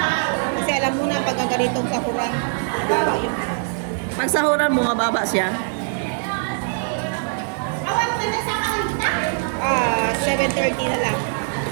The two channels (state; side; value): silent; left; 64 dB below the other